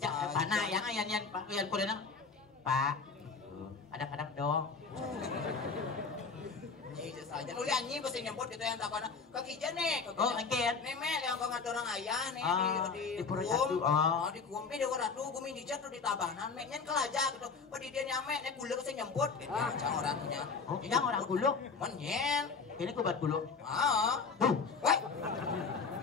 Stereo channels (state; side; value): quieter; right; 5.0 dB